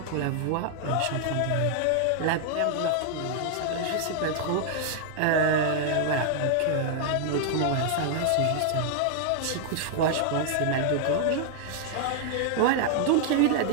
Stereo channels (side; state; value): both; different; correlation 0.00